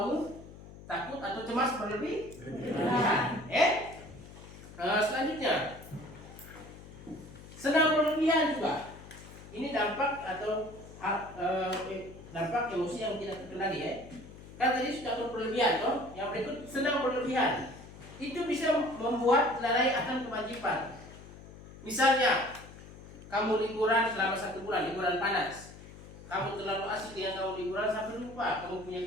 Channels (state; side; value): noise; left; hum, 17 dB below the sound